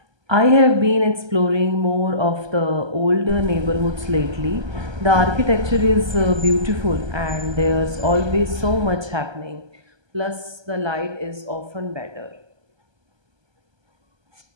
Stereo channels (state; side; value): late; left; 1.3 ms